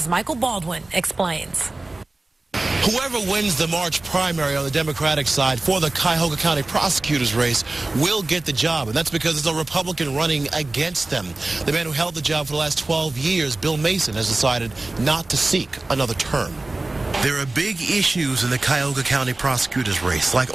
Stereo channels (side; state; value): left; quieter; 3.0 dB